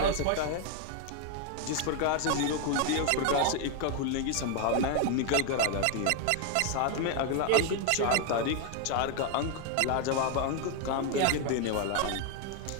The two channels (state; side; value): different; both; correlation 0.01